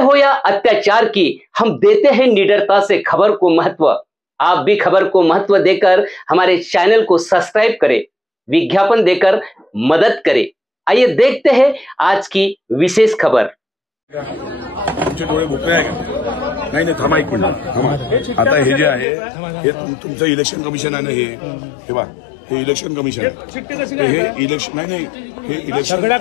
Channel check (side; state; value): right; drops out; at 19.1 s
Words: या अत्याचार की, हम देते हैं निडरता से खबर को महत्व। आप भी खबर को महत्व देकर हमारे चैनल को सब्सक्राइब करें, विज्ञापन देकर मदद करें। आइए देखते हैं आज की विशेष खबर। तुमचे डोळे भोकळे आहे का? नाही थांबा एक मिनिट थांबा। आता हे जे आहे हे तुमचं इलेक्शन कमिशन आहे ना, हे बघा, हे इलेक्शन कमिशन आहे। हे इलेक्शन नाही हे इलेक्शन